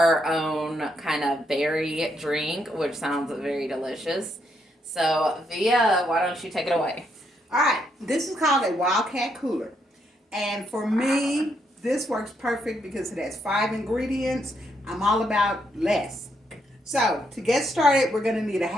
own kind of berry drink, which sounds very delicious. So Via, why don't you take it away? All right, this is called a Wildcat cooler. And for me, this works perfect because it has 5 ingredients. I'm all about less. So to get started, we're going to need a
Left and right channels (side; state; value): both; normal; correlation 0.77